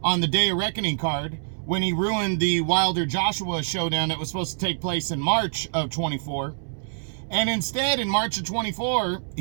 on the Day of Reckoning card, when he ruined the Wilder-Joshua showdown that was supposed to take place in March of 24. And instead, in March of 24,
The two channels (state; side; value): silent; left; 62 dB below the other